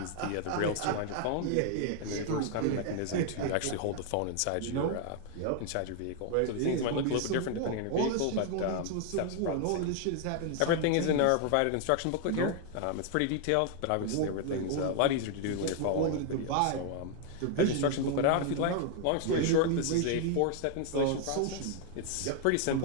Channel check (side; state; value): both; different; correlation 0.00